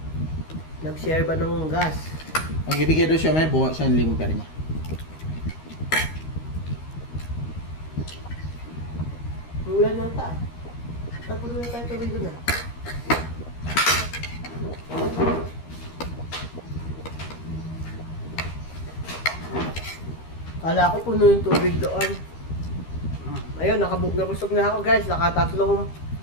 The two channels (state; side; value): late; right; 13 ms